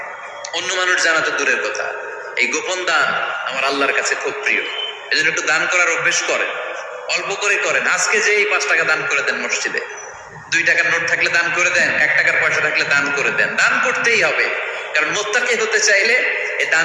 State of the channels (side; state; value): both; identical; correlation 1.00